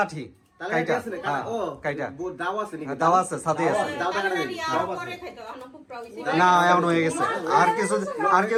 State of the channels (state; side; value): identical; both; correlation 1.00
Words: আঠি কাইটা। হ্যাঁ কাইটা দাও আছে নাকি? দাও আছে, সাথে আছে। দাও দেখা নেই। না এমন হয়ে গেছে, আর